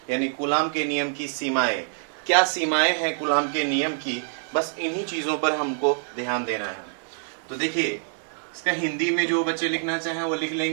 यानी कूलाम के नियम की सीमाएं। क्या सीमाएं हैं कूलाम के नियम की, बस इन्हीं चीज़ों पर हमको ध्यान देना है। तो देखिए, इसका हिंदी में जो बच्चे लिखना चाहें वो लिख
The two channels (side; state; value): left; silent; digital silence